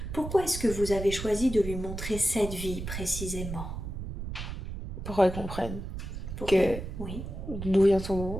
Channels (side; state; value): right; noise; rumble, 7 dB below the sound